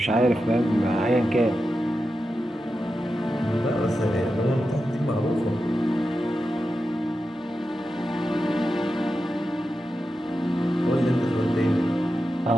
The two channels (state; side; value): normal; both; correlation 0.90